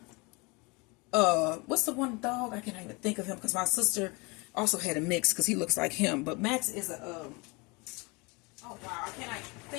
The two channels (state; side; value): quieter; right; 27.6 dB